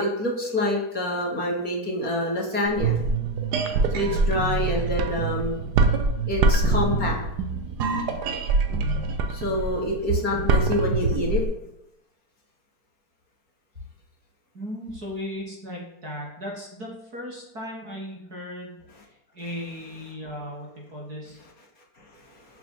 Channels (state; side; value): late; left; 4.3 ms